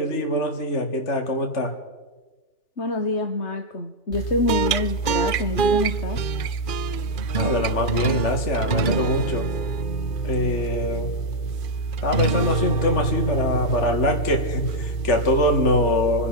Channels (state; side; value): late; right; 2.5 ms